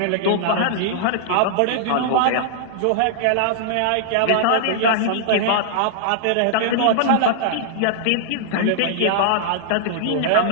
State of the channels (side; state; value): both; different; correlation -0.01